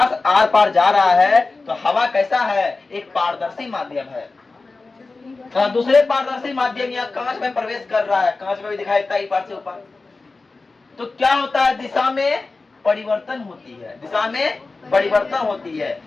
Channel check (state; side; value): quieter; right; 3.7 dB